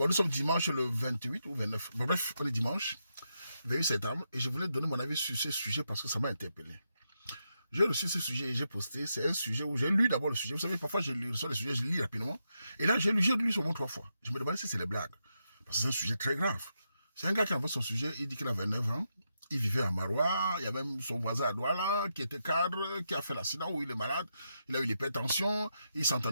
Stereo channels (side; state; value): both; inverted; correlation -0.84